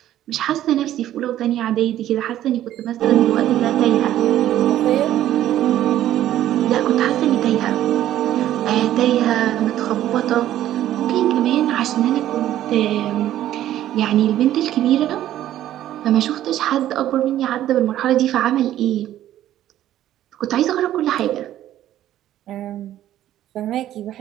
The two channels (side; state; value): left; quieter; 12.6 dB